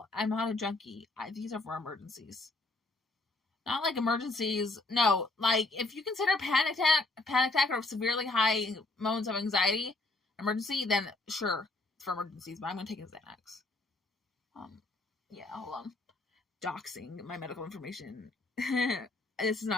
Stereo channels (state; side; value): quieter; right; 3.0 dB